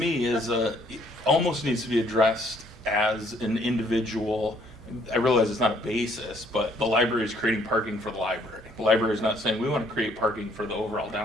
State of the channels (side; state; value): both; normal; correlation 0.64